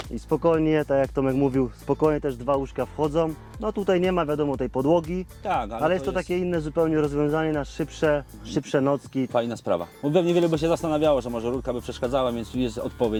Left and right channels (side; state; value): both; identical; correlation 1.00